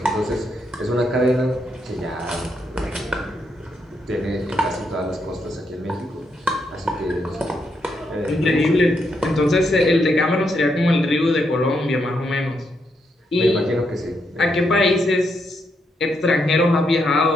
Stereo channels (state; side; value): normal; both; correlation 0.79